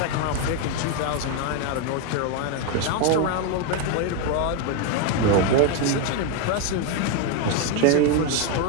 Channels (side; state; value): both; different; correlation 0.01